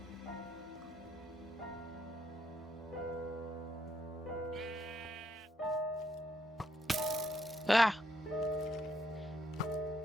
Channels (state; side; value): normal; both; correlation 0.75